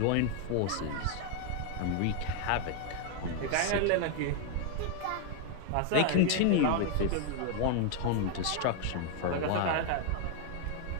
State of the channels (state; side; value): different; both; correlation 0.00